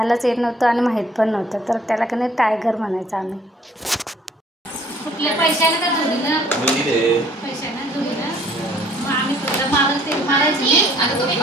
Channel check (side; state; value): both; normal; correlation 0.58